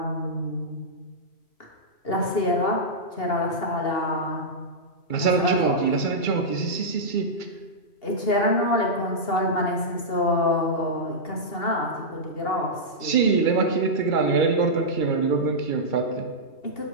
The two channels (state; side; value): late; right; 2.8 ms